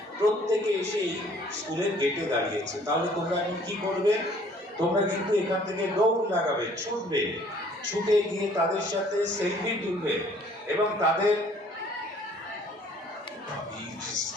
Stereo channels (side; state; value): both; normal; correlation 0.57